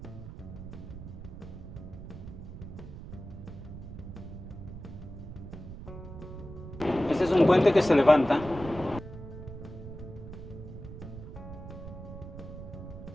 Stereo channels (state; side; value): noise; right; rumble, 11 dB below the sound